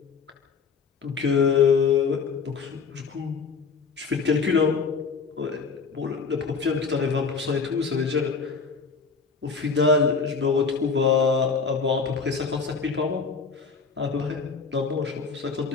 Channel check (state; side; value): quieter; right; 5.2 dB